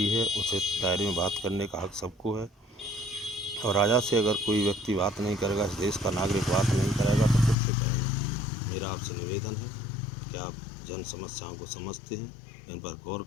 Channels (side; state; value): right; drops out; at 7.6 s